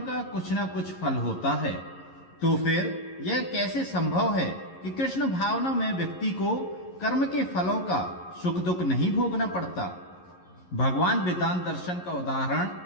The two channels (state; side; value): late; right; 11 ms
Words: का कुछ न कुछ फल होता है, तो फिर यह कैसे संभव है कि कृष्ण भावना में व्यक्ति को कर्म के फलों का सुख दुख नहीं भोगना पड़ता। भगवान वेदांत दर्शन का